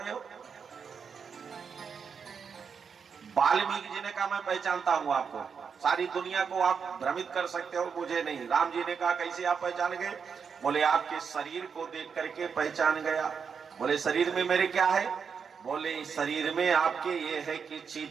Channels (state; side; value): quieter; left; 6.3 dB